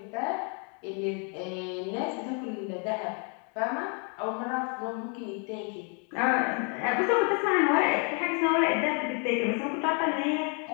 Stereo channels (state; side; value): quieter; right; 38.3 dB